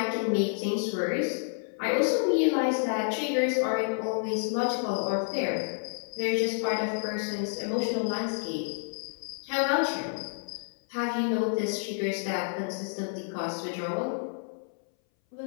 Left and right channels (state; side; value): silent; right; 58 dB below the other